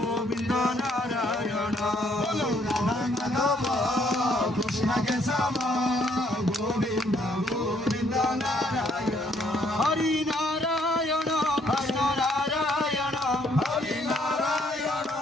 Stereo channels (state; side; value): normal; both; correlation 0.68